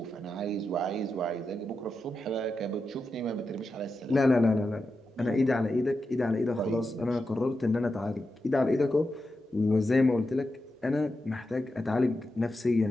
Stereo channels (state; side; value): normal; both; correlation 0.88